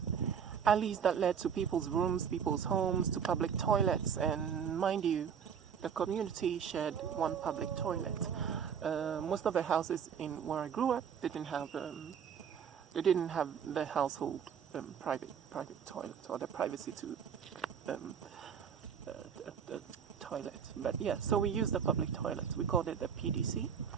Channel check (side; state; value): left; quieter; 7.5 dB